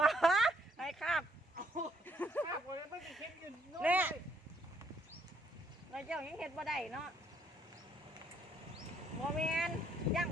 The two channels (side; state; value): both; normal; correlation 0.69